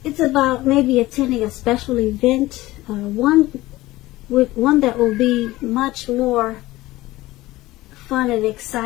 it's about maybe attending a special event, one that will be much more fun and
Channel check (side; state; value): right; quieter; 18.0 dB